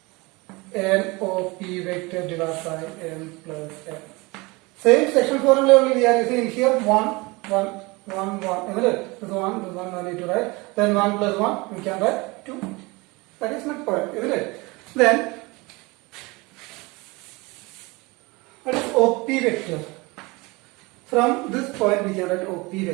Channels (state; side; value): quieter; left; 24.7 dB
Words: NOP vector divided by M plus N. Same section formula only we are using here 1, 1, 1, 1. Isn't it? This 1 I need to write. Then 1 plus 1 we can write 2. That is midpoint, isn't it? Then what is OP vector? From this point we can write OP